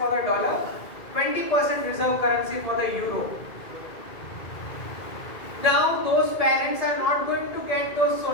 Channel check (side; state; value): right; late; 2.2 ms